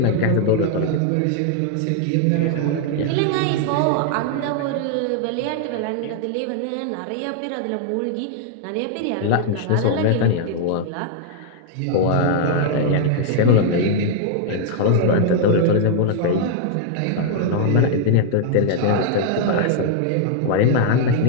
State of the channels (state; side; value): different; both; correlation -0.01